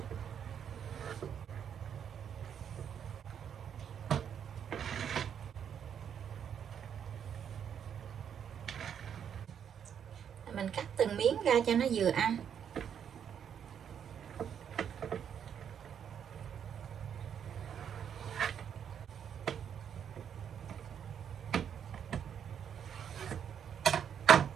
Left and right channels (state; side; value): quieter; left; 8.3 dB